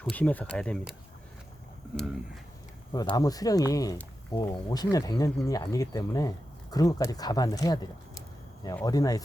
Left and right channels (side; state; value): both; normal; correlation 0.91